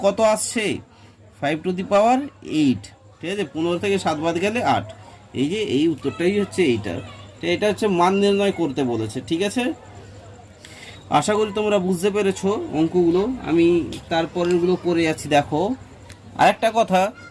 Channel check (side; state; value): both; identical; correlation 1.00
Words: কত আসছে 5 টু দি পাওয়ার 8। ঠিক আছে, 15 থেকে 7 বাদ গেলে 8। এই যে এই উত্তরটাই হচ্ছে এইটা। তো এটা হচ্ছে মান নির্ণয় করতে বলেছে। ঠিক আছে, আশা করি তোমরা বুঝতে পেরেছো অঙ্কগুলো। আমি তারপরেরগুলো করে যাচ্ছি। দেখো আরেকটা কথা,